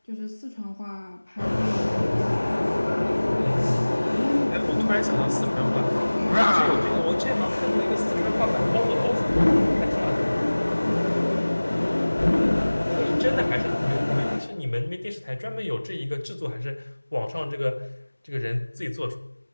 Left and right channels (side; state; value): both; inverted; correlation -1.00